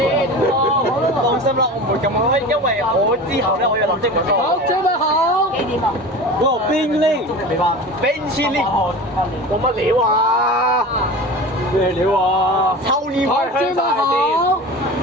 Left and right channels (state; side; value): normal; both; correlation 0.33